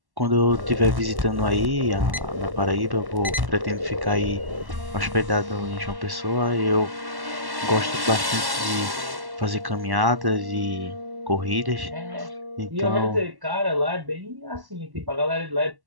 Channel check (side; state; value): left; late; 1.1 ms